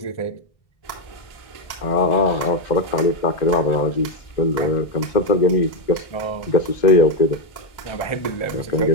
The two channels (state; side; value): late; right; 1.6 ms